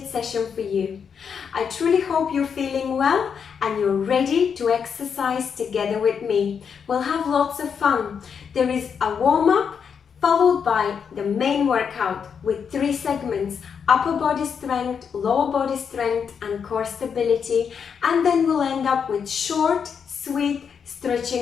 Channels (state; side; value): quieter; right; 6.8 dB